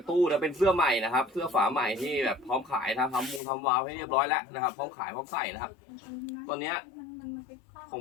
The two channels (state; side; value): drops out; right; at 3.4 s